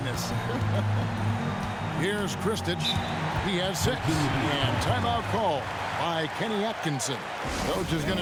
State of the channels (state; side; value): identical; both; correlation 1.00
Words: Here's Kristich. He has 6. And timeout call by Kenny Atkinson. Coach is